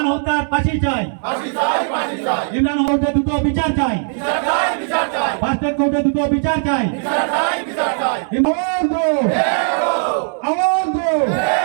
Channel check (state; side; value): silent; left; digital silence